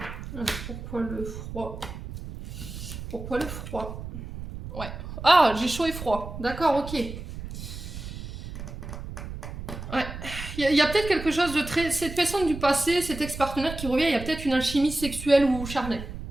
Alors, pourquoi le froid? Pourquoi le froid? Ouais. Ah, j'ai chaud et froid. D'accord, ok. Ouais. Il y a peut-être quelque chose de très... Cette personne du passé, cet ex-partenaire qui revient, il y a peut-être une alchimie sexuelle ou charnelle.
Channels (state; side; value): noise; right; rumble, 10 dB below the sound